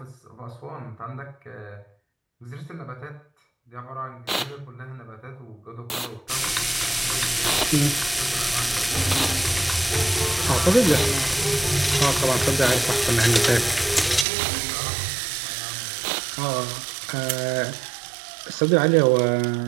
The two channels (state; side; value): drops out; left; at 14.2 s